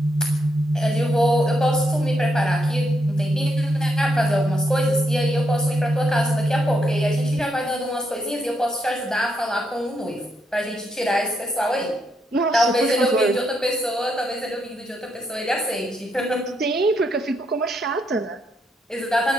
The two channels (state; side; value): normal; both; correlation 0.78